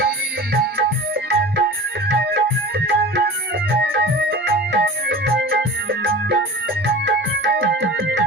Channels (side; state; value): both; normal; correlation 0.37